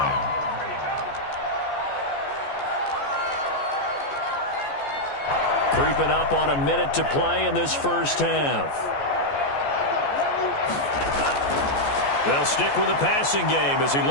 Creeping up on a minute to play in this first half. They'll stick with the passing game as he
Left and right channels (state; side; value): late; right; 14 ms